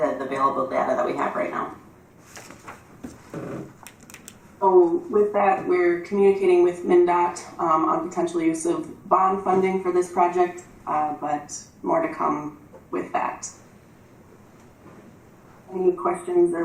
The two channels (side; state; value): both; identical; correlation 1.00